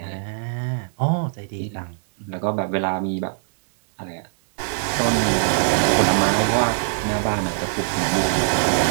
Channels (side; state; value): left; silent; digital silence